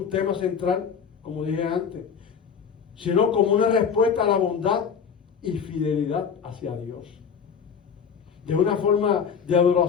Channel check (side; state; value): right; quieter; 6.8 dB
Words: tema central, como dije antes. Sino como una respuesta a la bondad y fidelidad hacia Dios. De una forma de